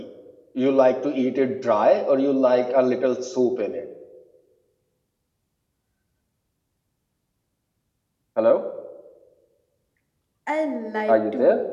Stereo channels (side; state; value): both; identical; correlation 1.00